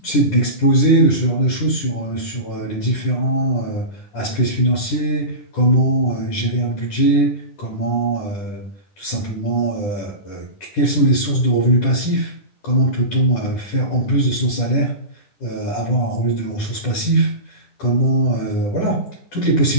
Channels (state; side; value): late; right; 10 ms